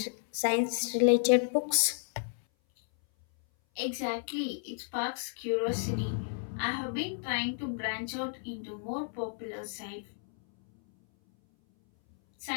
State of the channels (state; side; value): silent; right; 57 dB below the other